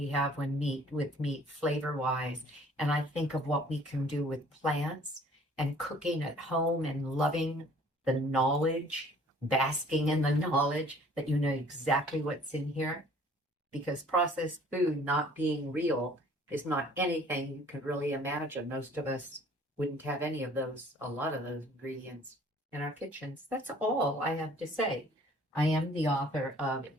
have with meat flavor-wise. And I think of what we can do with plants and cooking at home and loving the knowledge, basking in the knowledge that you know exactly what's in here. Because processed food not being real is not anything you could really imagine. Most of us wouldn't have any of those, a lot of those ingredients in our kitchens. That's all I have to say. I am the author of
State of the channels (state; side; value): normal; both; correlation 0.54